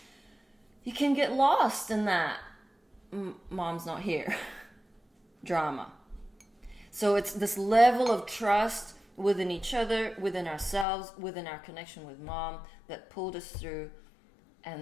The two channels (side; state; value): right; drops out; at 10.9 s